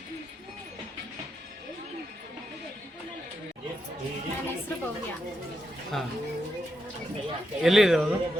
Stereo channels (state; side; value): normal; both; correlation 0.84